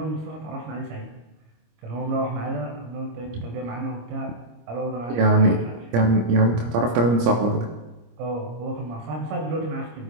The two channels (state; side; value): late; left; 26 ms